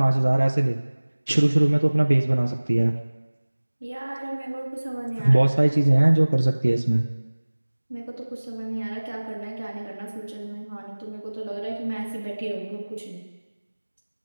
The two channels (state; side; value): inverted; both; correlation -1.00